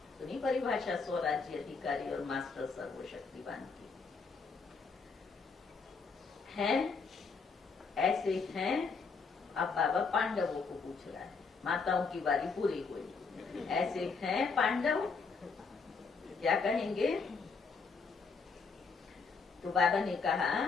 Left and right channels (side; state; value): right; quieter; 4.8 dB